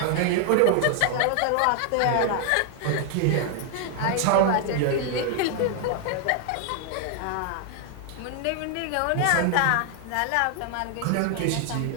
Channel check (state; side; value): different; both; correlation 0.00